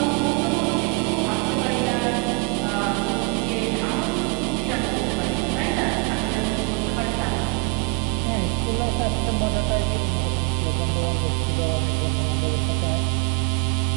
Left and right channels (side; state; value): left; quieter; 30.0 dB